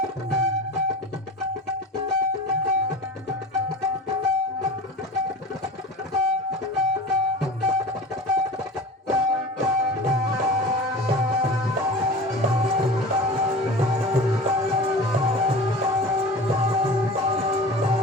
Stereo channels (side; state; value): both; normal; correlation 0.35